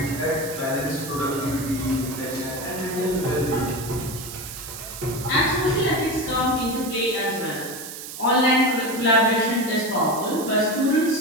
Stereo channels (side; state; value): right; noise; hiss, 10 dB below the sound